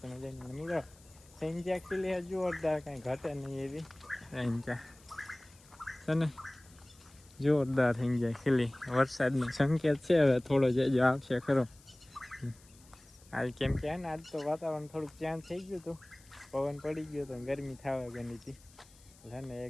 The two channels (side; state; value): left; noise; hiss, 26 dB below the sound